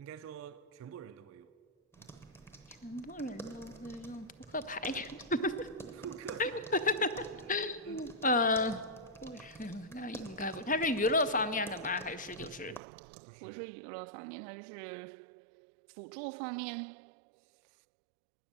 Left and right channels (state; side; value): drops out; left; at 12.8 s